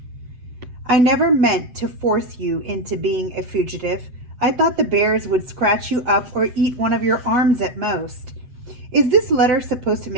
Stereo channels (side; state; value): left; late; 8.0 ms